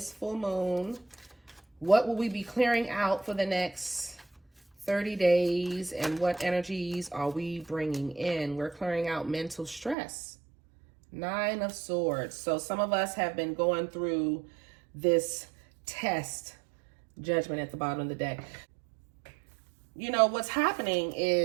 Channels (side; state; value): left; drops out; at 10.0 s